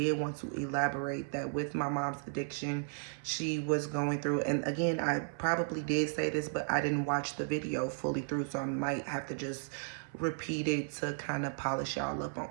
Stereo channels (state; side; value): silent; left; 55 dB below the other